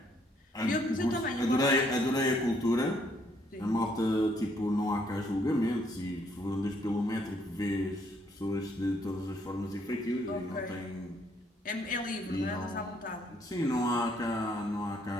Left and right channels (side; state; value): both; normal; correlation 0.69